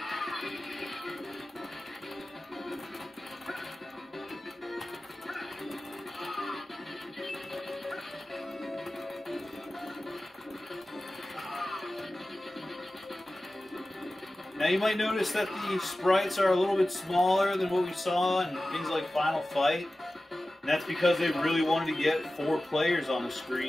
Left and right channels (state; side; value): normal; both; correlation 0.96